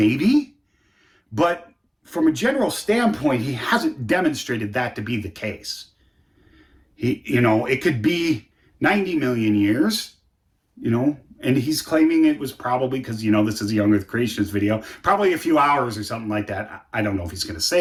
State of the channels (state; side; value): identical; both; correlation 1.00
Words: But from a general standpoint, he hasn't demonstrated that to be the case. It could be 90 million years, and he's claiming it was probably because, this is a Young Earth Creationist video, probably a few hours or something like that. I don't know if he's going to